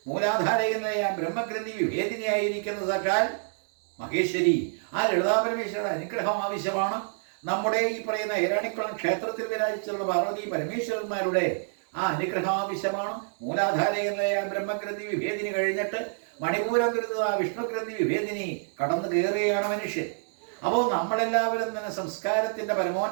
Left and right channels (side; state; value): left; silent; digital silence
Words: മൂലാധാരകനായ ബ്രഹ്മഗ്രന്ഥി വിഭേദിനിയായിരിക്കുന്ന സാക്ഷാൽ മഹേശ്വരി ആ ലളിതാപരമേശ്വരിയുടെ അനുഗ്രഹം ആവശ്യമാണ്. നമ്മുടെ ഈ പറയുന്ന ഏരാണിക്കുളം ക്ഷേത്രത്തിൽ വിരാജിച്ചുള്ള പാർവതി പരമേശ്വരന്മാരുടെ ആ അനുഗ്രഹം ആവശ്യമാണ്. മൂലാധാരകനായ ബ്രഹ്മഗ്രന്ഥി വിഭേദിനി കഴിഞ്ഞിട്ട് മണിപൂരകൃത വിഷ്ണുഗ്രന്ഥി വിഭേദിനി കടന്നു കയറുകയാണ് മനുഷ്യൻ. അപ്പോൾ നമ്മളെല്ലാവരും തന്നെ സംസ്കാരത്തിൻ്റെ